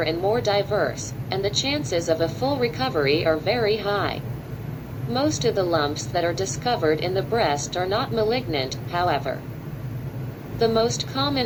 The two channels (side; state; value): both; identical; correlation 1.00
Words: and more diverse, and the chances of a full recovery are very high. Most of the lumps that are discovered in the breast are not malignant, however. The most